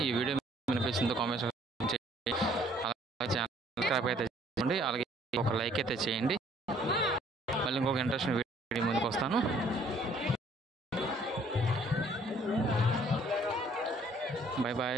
ఈ వీడియో వినిపించిందో కామెంట్స్ చేయండి. అలాగే ఛానల్ సబ్స్క్రైబ్ అయితే చేయండి. అలాగే ఒక లైక్ అయితే చేయండి. మళ్ళీ ఇంకొక ఇంట్రెస్టింగ్ వీడియో ముందుకు వస్తాను. Bye bye.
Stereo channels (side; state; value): both; normal; correlation 0.60